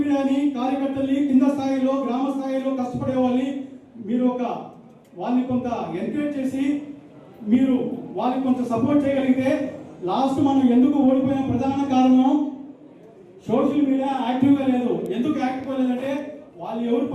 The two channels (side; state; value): both; identical; correlation 1.00